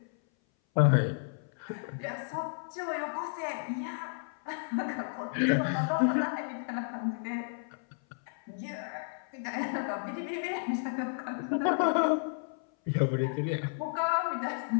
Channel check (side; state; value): right; silent; 56 dB below the other